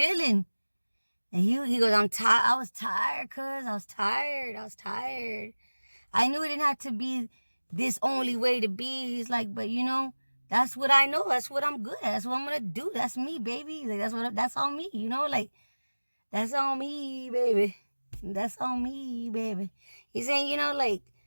And he goes, I'm tired. I was tired, cuz. I was tired. I knew it didn't have to be this only way to be. He's like, but you know, that's what I know. That's what I'm good at. That's what I'm going to do. That's me, baby. Like, that's on me, you know? Like, that's on me, baby. That's on me, baby. He's saying, you know, like,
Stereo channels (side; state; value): both; inverted; correlation -1.00